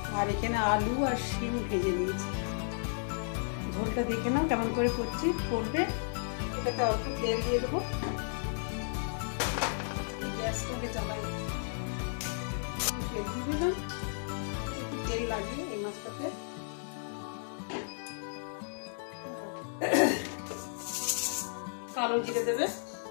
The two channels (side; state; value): right; silent; digital silence